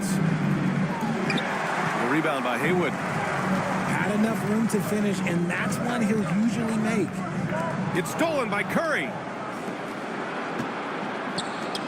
The rebound by Haywood. Had enough room to finish, and that's one he'll usually make. It's stolen by Curry.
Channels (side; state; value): both; identical; correlation 1.00